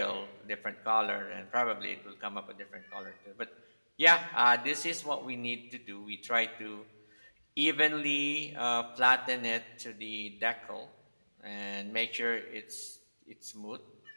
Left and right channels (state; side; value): inverted; both; correlation -1.00